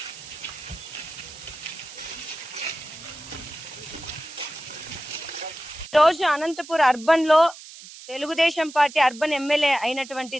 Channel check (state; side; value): noise; right; hiss, 16 dB below the sound